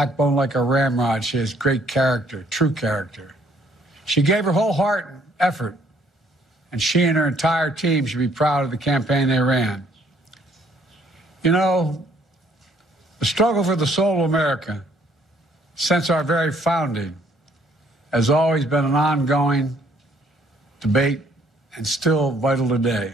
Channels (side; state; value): both; normal; correlation 0.64